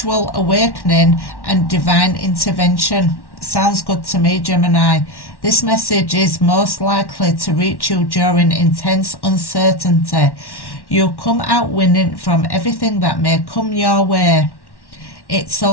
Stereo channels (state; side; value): late; right; 1.1 ms